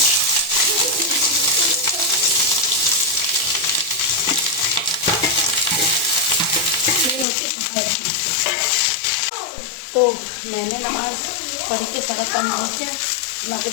तो मैंने नमाज पढ़ के सारा काम हो गया, मैं आपको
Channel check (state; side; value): drops out; right; at 7.2 s